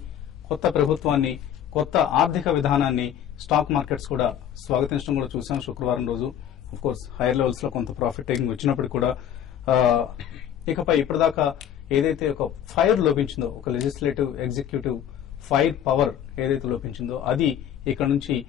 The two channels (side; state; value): right; quieter; 9.9 dB